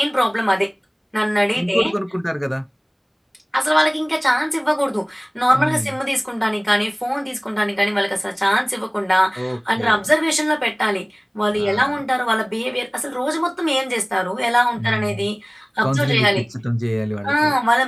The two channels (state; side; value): identical; both; correlation 1.00